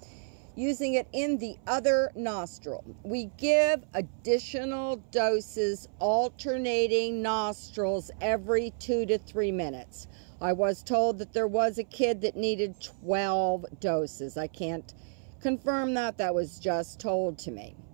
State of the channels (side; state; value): left; silent; 58 dB below the other